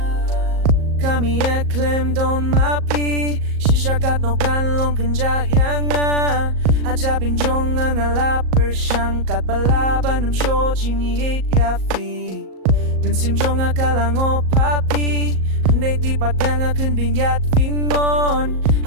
kami claim don mapi shishakat no kan long kanja yanga ajabin jong ang alaper siyang kat balaban ng show jingiyit yafi Gansim jong akalang o papi Hindi tipat yang akan binyat fingon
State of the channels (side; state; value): left; late; 38 ms